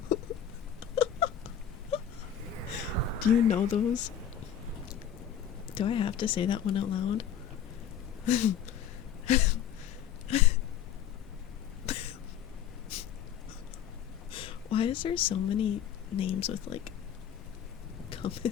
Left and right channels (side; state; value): right; quieter; 9.2 dB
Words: Do you know those? Do I have to say that one out loud? Why is there so many names with like